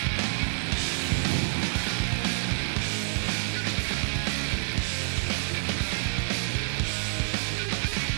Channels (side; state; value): left; silent; digital silence